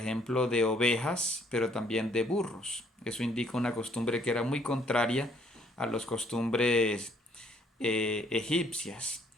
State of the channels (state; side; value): normal; both; correlation 0.65